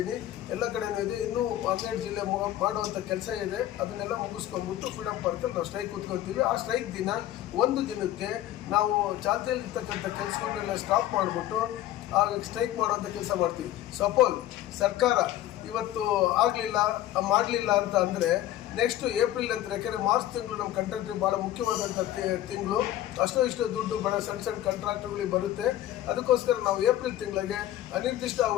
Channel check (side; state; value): right; quieter; 13.3 dB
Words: ಎಲ್ಲ ಕಡೆನೂ ಇದೆ, ಇನ್ನೂ 12 ಜಿಲ್ಲೆ ಮಾಡುವಂಥ ಕೆಲಸ ಇದೆ. ಅದನ್ನೆಲ್ಲ ಮುಗಿಸ್ಕೊಂಡ್ಬಿಟ್ಟು ಫ್ರೀಡಮ್ ಪಾರ್ಕಲ್ಲಿ ನಾವು ಸ್ಟ್ರೈಕ್ ಕೂತ್ಕೊಳ್ತೀವಿ. ಆ ಸ್ಟ್ರೈಕ್ ದಿನ ಒಂದು ದಿನಕ್ಕೆ ನಾವು ಚಾಲ್ತಿಯಲ್ಲಿರ್ತಕ್ಕಂಥ ಕೆಲಸಗಳನ್ನೆಲ್ಲ ಸ್ಟಾಪ್ ಮಾಡಿಬಿಟ್ಟು ಆಗ ಸ್ಟ್ರೈಕ್ ಮಾಡುವಂಥ ಕೆಲಸ ಮಾಡ್ತೀವಿ. ಸಪೋಸ್ ಸರ್ಕಾರ ಇವತ್ತು ಮಾಡಲಿಲ್ಲ ಅಂತ ಅಂದರೆ ನೆಕ್ಸ್ಟ್ ಏಪ್ರಿಲ್ ಅಂತ, ಯಾಕೆಂದರೆ ಮಾರ್ಚ್ ತಿಂಗಳು ನಮ್ಮ ಕಾಂಟ್ರಾಕ್ಟ್ರಿಗೆ ಭಾಳ ಮುಖ್ಯವಾದಂಥ ತಿಂಗಳು. ಇಷ್ಟು ದುಡ್ಡು ಬಡ ಸಣ್ಣ ಕಾಂಟ್ರಾಕ್ಟ್ರುಗಳಿಗೆ ಬರುತ್ತೆ. ಅದಕ್ಕೋಸ್ಕರ ನಾವು ಏಪ್ರಿಲ್ ತಿಂಗಳಿಗೆ ಅನಿರ್ದಿಷ್ಟ